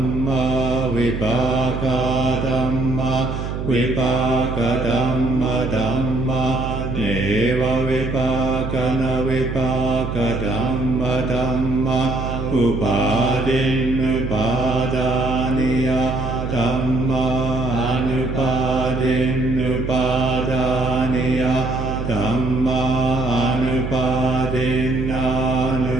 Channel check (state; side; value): noise; right; hum, 5 dB below the sound